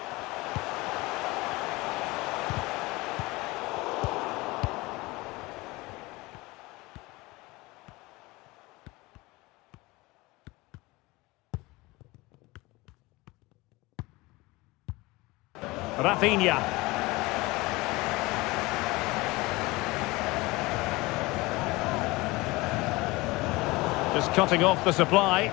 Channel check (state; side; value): quieter; right; 22.1 dB